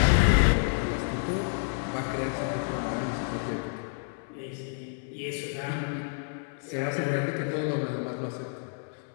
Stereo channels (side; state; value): right; silent; 58 dB below the other